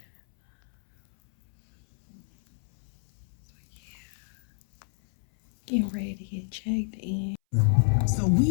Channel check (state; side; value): silent; right; 60 dB below the other